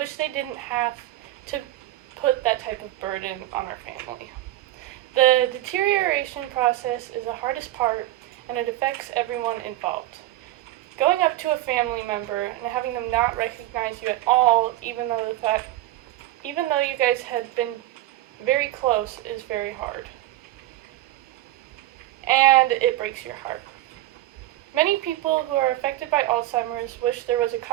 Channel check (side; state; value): left; quieter; 15.5 dB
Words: they didn't have to put that type of burden on our family. The deterioration process is the hardest part, and it affects everyone involved. Going up to a family member and having them not recognize you at all, even though you guys had been very close, is very hard. And it breaks your heart. Many people who are affected by Alzheimer's wish there was a